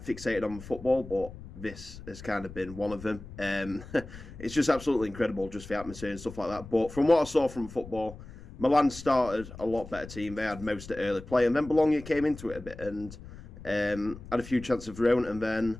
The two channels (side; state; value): left; noise; rumble, 15 dB below the sound